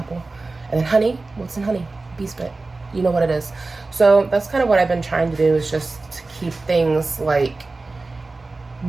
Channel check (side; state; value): left; quieter; 3.5 dB